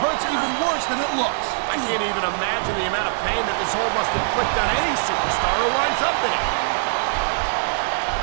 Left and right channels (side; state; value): left; silent; digital silence